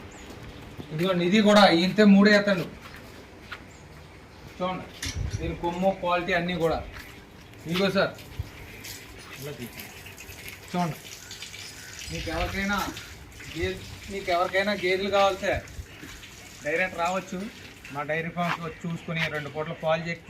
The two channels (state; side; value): identical; both; correlation 1.00